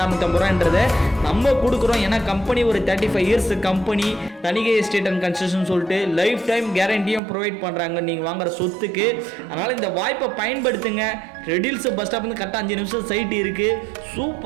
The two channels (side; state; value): left; drops out; at 7.2 s